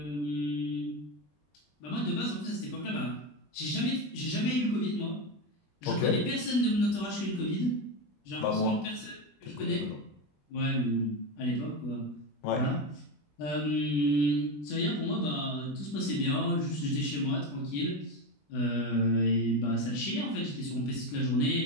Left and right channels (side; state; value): right; late; 20 ms